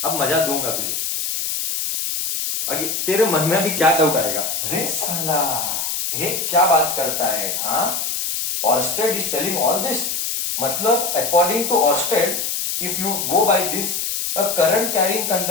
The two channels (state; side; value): noise; left; hiss, 2 dB below the sound